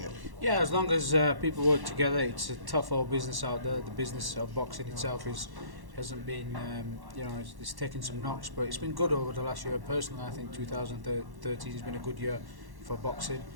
it. Yeah, as long as people work together. It's a tough old business out there. The business of boxing itself hasn't been, it's taken some knocks, but it's been good over the last year. Personally, I think 2013 has been a good year for boxing.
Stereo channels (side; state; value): left; late; 1.1 ms